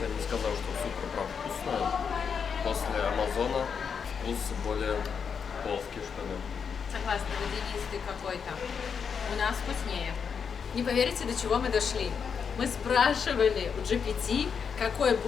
я не сказал, что супер прям вкусное. После Амазона вкус более плоский, что ли. Согласна, водянистый какой-то. У нас вкуснее. Не поверите, до чего мы дошли. Мы спрашивали у GPT, какой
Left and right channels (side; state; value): right; quieter; 6.5 dB